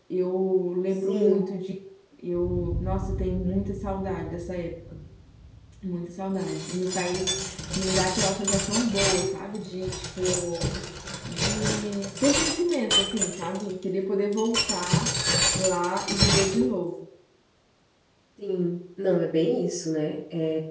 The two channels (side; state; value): both; identical; correlation 1.00